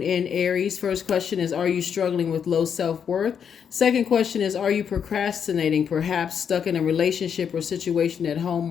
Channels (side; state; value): right; quieter; 7.6 dB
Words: in Aries. First question is, are you struggling with low self-worth? Second question is, are you procrastinating, perhaps stuck in a relationship or situation at home